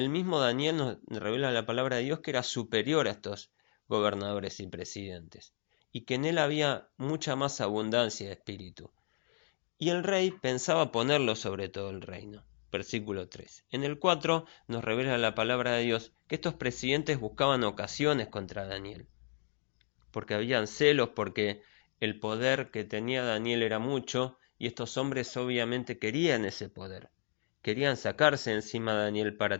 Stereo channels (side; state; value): right; silent; digital silence